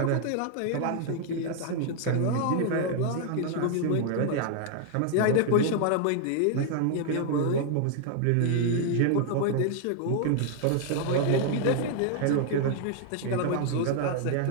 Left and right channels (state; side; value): different; both; correlation 0.00